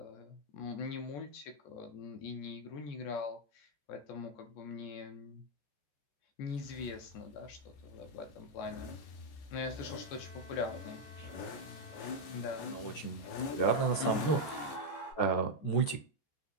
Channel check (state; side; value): late; right; 14 ms